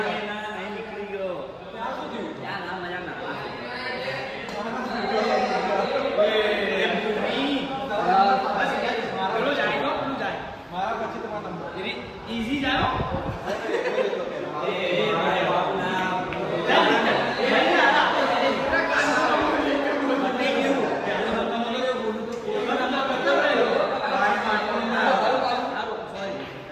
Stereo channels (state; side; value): identical; both; correlation 1.00